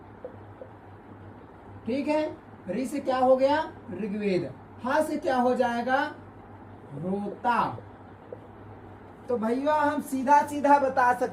ठीक है, री से क्या हो गया, ऋग्वेद। हा से क्या हो जाएगा, रोता। तो भैया हम सीधा सीधा बता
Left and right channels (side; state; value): both; identical; correlation 1.00